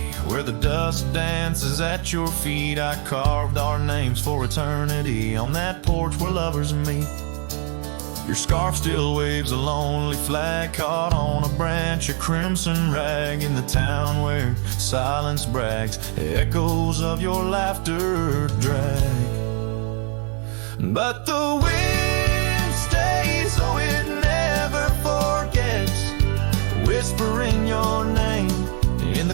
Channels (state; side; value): quieter; left; 39.1 dB